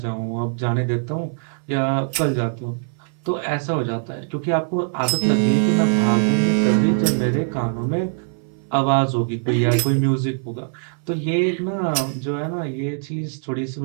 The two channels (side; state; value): left; silent; 64 dB below the other